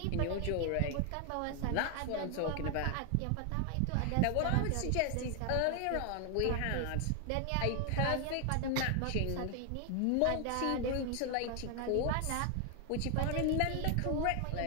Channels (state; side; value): different; both; correlation 0.00